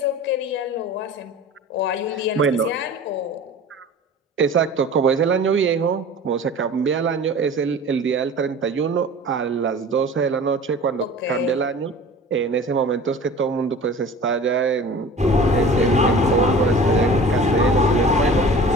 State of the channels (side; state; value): both; normal; correlation 0.41